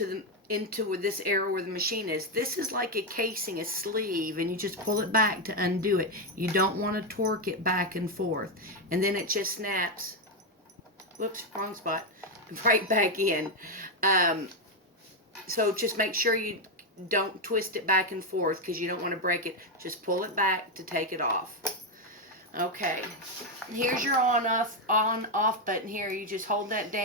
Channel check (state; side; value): normal; both; correlation 0.06